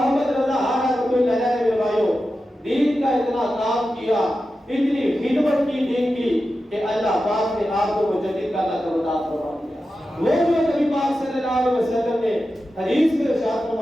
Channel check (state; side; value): normal; both; correlation 0.92